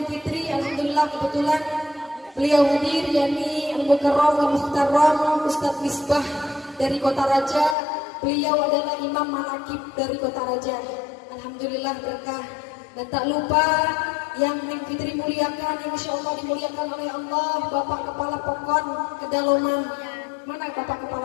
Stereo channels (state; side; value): drops out; right; at 7.8 s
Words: Fitri. Alhamdulillah kebetulan beliau hadir, yakni Al-Mukarram wa Muhtaram Ustaz Misbah dari Kota Raja. Beliau adalah Imam Manakib dari Kota Raja. Alhamdulillah berkah. Dan tak lupa yang Neng Fitri muliakan, yang insya Allah dimuliakan oleh Allah, Bapak Kepala Pokon Kedaloman. Mana Bapak